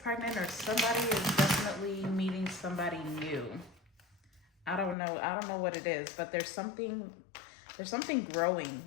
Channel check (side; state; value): right; drops out; at 5.0 s